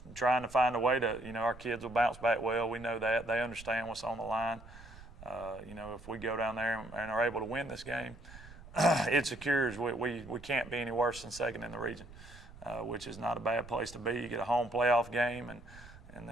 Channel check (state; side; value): noise; right; rumble, 18 dB below the sound